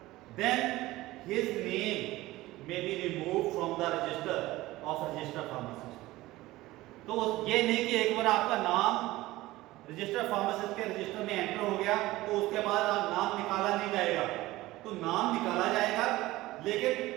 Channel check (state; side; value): quieter; left; 18.0 dB